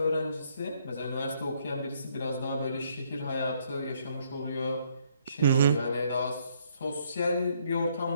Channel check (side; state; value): both; inverted; correlation -0.68